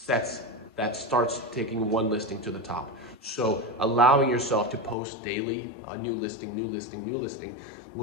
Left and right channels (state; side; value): drops out; right; at 5.0 s